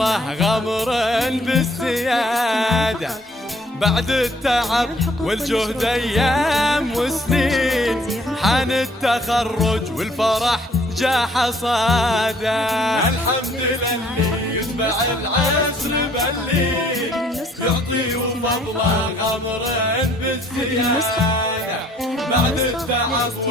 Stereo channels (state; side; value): normal; both; correlation 0.60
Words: غمر بالزيادة. بعد التعب والجهد ايام وسنين، حان التخرج والفرح جا حصاده. الحمد للي يتبع العسر باللين، يعطي وفضله غمر بالزيادة. بعد التعب